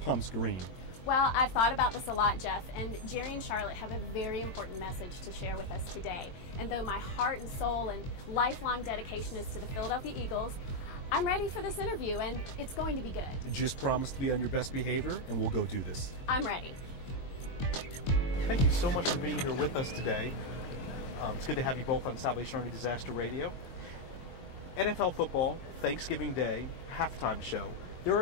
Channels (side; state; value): right; late; 22 ms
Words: green. Well, I've thought about this a lot, Jeff, and Jerry and Charlotte have a very important message to share with us today. And though my heart and soul and lifelong dedication is to the Philadelphia Eagles, I'm ready for this interview, and it's going to be good. Just promise to be on your best behavior, and we'll go do this. I'm ready. Thank you so much for being here with us today. It's good to have you both on Salvation Army Disaster Radio. NFL football, Thanksgiving Day, halftime show. There